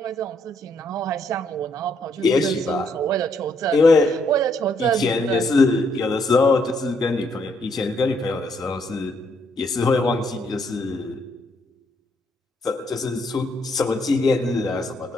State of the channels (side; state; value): both; normal; correlation 0.73